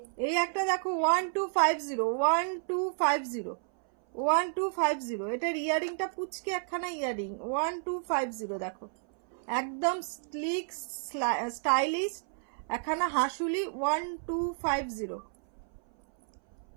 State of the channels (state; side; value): silent; left; 57 dB below the other